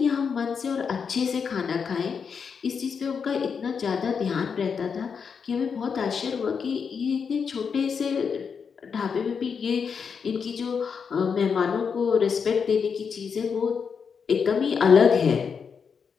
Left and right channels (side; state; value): right; quieter; 6.2 dB